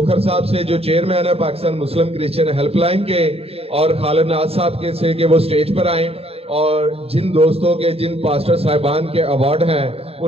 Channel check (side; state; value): left; late; 0.29 ms